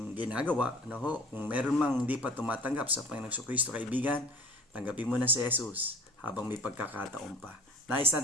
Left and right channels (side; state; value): both; normal; correlation 0.45